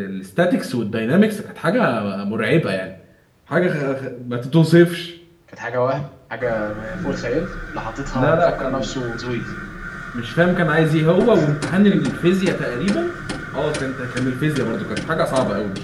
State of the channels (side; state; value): both; identical; correlation 1.00